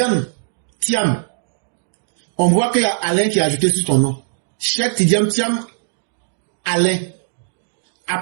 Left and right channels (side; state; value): left; silent; digital silence